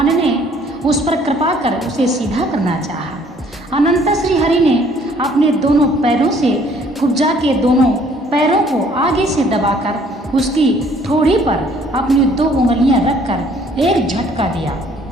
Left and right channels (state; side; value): normal; both; correlation 0.59